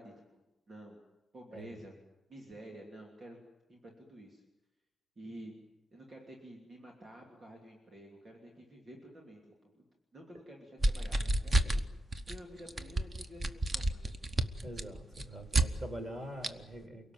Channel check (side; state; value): both; normal; correlation 0.87